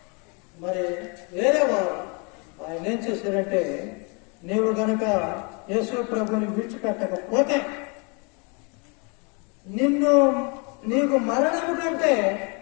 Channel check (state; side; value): quieter; right; 33.3 dB